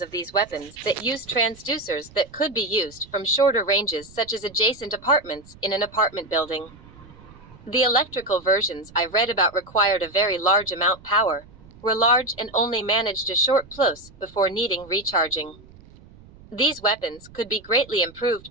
of these weapons that use transducers that could be used from shorter ranges, such as adjacent apartments in an apartment building. The electrical versions I read about required a very large amount power, were large and only managed a short plus before needing recharging. These weapons could be greatly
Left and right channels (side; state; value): right; noise; rumble, 22 dB below the sound